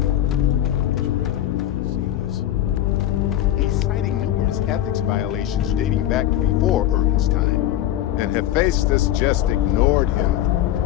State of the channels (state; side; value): quieter; right; 12.7 dB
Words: Referral would want to see this. He's citing numerous ethics violations dating back to before Urban's time, and Hephaestus just ignored him.